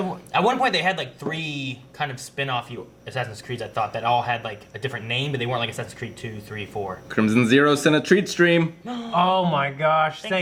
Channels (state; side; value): identical; both; correlation 1.00